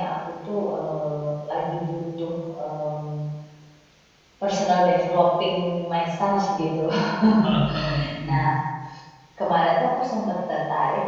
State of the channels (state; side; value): identical; both; correlation 1.00